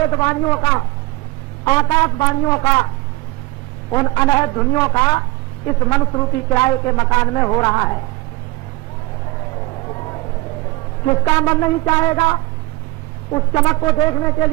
का, आकाशवाणियों का, उन अनहद ध्वनियों का इस मनुष्य रूपी किराए के मकान में हो रहा है। किसका मन नहीं चाहेगा उस चमक को देखने के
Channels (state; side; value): quieter; left; 21.7 dB